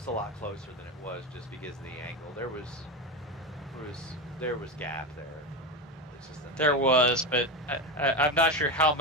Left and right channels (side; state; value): both; normal; correlation 0.17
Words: lot closer than it was just because of the angle. There was gap there. It's just There was, but I'm not sure how